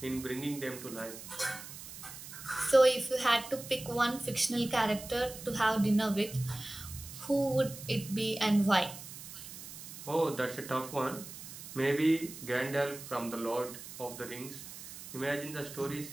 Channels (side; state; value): right; noise; hiss, 13 dB below the sound